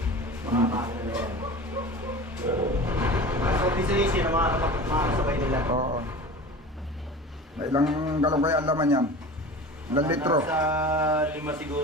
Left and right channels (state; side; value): normal; both; correlation 0.36